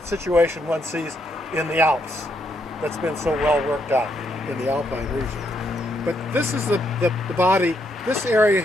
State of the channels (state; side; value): normal; both; correlation 0.76